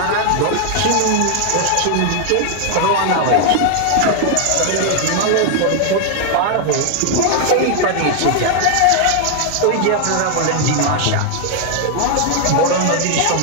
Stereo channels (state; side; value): different; both; correlation 0.00